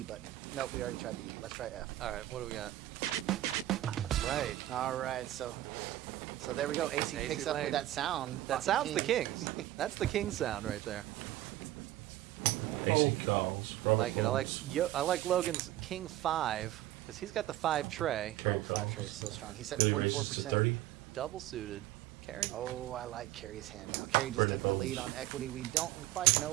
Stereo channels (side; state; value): left; quieter; 14.8 dB